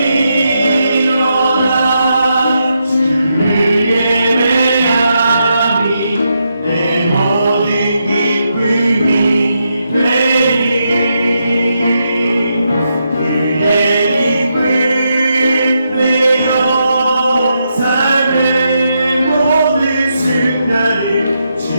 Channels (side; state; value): both; inverted; correlation -0.82